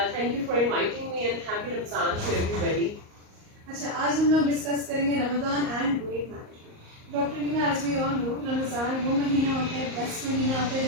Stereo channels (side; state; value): left; late; 38 ms